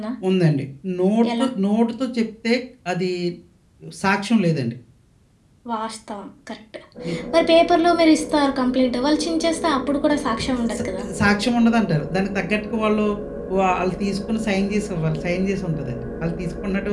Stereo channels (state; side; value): identical; both; correlation 1.00